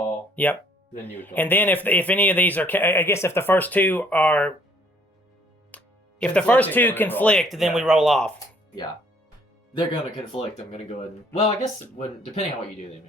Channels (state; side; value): normal; both; correlation 0.61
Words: Yep. then you would call. And then if any of these are, I guess if the first 2 are, if the first 2 Conflicting, then we roll. conflict, then we Yeah. roll off. Yeah. They're going to conflict. I'm going to go ahead and... Well, I guess depending on what you do, they